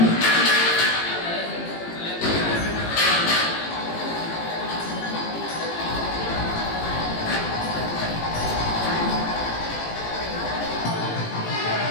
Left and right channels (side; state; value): right; late; 18 ms